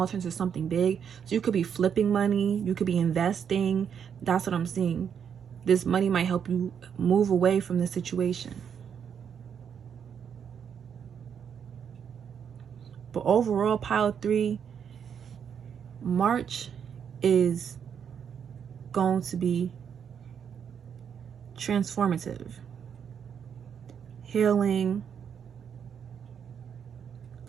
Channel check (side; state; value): left; quieter; 7.7 dB